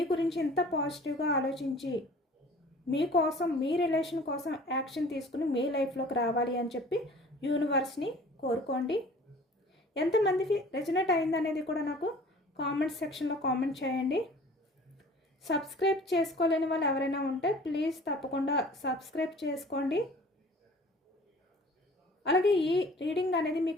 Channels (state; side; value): normal; both; correlation 0.47